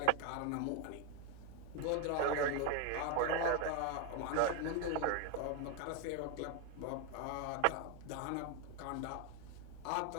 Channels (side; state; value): both; different; correlation 0.01